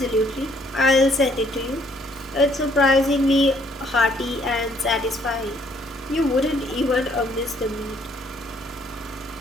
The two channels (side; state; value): both; normal; correlation 0.65